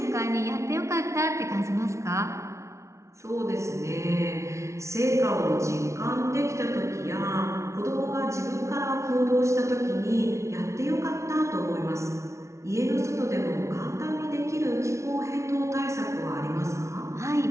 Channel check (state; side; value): late; left; 0.14 ms